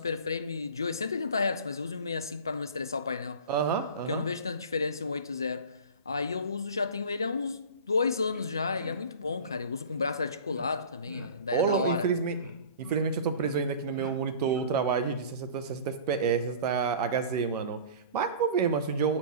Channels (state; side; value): inverted; both; correlation -0.39